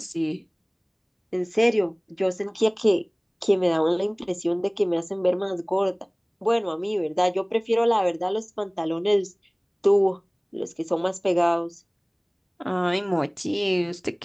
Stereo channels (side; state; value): both; identical; correlation 1.00